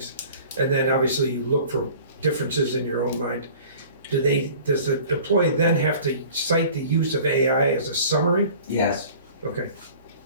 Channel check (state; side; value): inverted; both; correlation -0.46